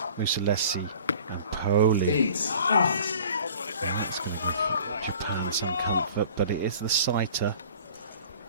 Mussolesi and Poli. And that's going to give Japan some comfort, but it is the sighter.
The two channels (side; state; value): both; inverted; correlation -0.46